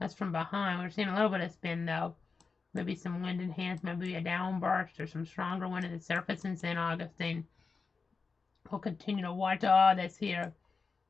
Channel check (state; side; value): quieter; right; 4.7 dB